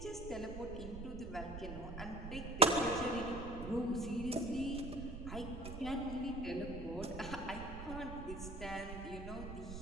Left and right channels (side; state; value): right; noise; rumble, 8 dB below the sound